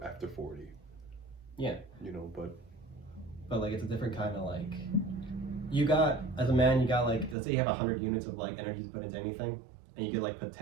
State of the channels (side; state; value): left; drops out; at 7.4 s